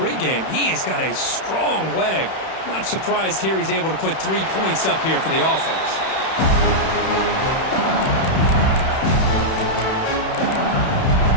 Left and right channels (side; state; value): right; late; 31 ms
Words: He has got a strong leg. Not surprised here he's able to put 3 points up here for the offense.